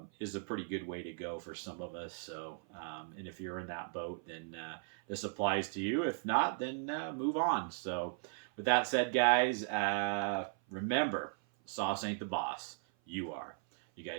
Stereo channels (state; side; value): silent; left; 53 dB below the other